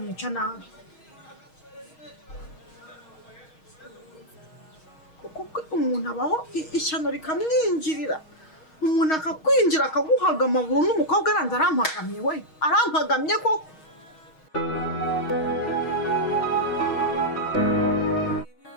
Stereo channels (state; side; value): late; right; 6.4 ms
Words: nabi kuko umuntu abaho ishyano rikamwinjirira umuntu akakwinjira akaguhaga amaguru n'umukobwa aranze arampagamye we arampagamye koko